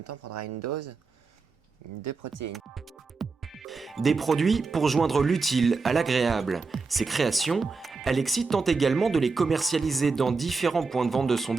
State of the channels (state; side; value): quieter; left; 4.3 dB